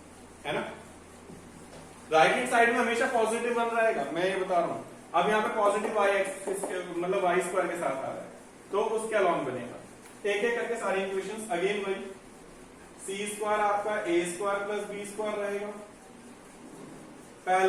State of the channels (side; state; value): both; identical; correlation 1.00